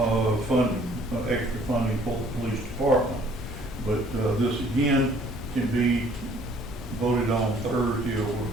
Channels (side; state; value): both; normal; correlation 0.58